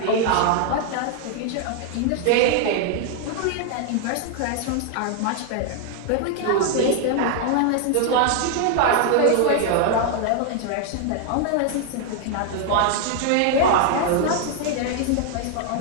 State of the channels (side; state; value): both; different; correlation 0.00